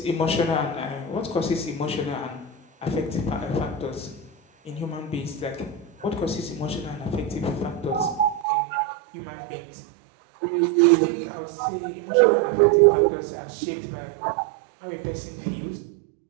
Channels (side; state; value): left; drops out; at 8.5 s